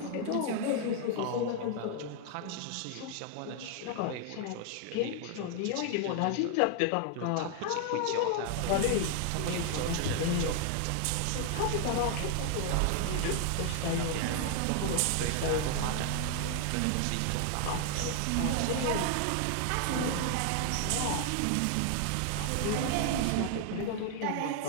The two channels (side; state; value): both; different; correlation 0.00